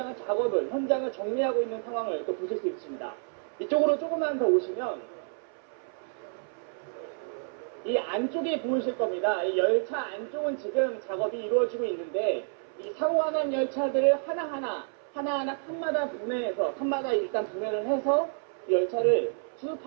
정리하고 있는 상황을 또 보실 수 있습니다. 이쪽으로 조금만 더 오시면 이 안쪽이 보이실 겁니다. 이 열차 안쪽은 지금 작업이 이루어지고 있는데 이 사고가 난 열차들을 하나하나 칸마다 일단 분해를 해서 이 열차를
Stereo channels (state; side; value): silent; left; 58 dB below the other